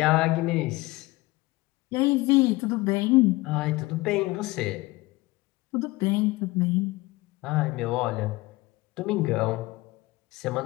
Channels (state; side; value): quieter; right; 20.9 dB